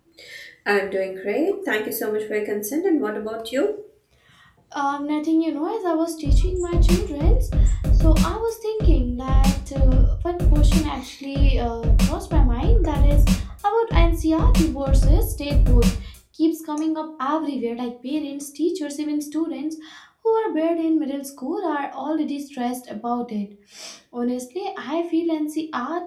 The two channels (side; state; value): both; identical; correlation 1.00